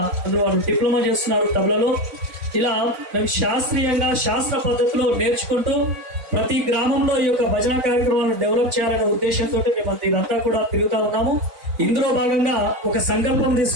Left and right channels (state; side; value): late; left; 4.0 ms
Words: అందులో వాళ్ళు డిప్లొమా చేస్తున్నారు తబలలో. ఇలా మేము శాస్త్రీయంగా శాస్త్ర పద్ధతిలో నేర్చుకుంటూ ప్రతి గ్రామంలో ఈ యొక్క భజన కార్యక్రమాలను డెవలప్ చేయాలనే ఉద్దేశంతో మేము ఇదంతా కూడా తిరుగుతా ఉన్నాము. ఇందులో భాగంగా ఒక సంకల్పం